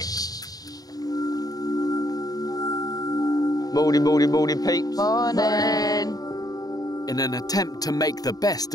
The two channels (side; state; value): right; late; 0.18 ms